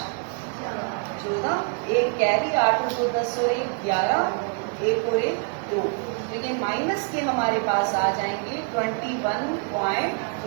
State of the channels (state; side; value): quieter; left; 38.8 dB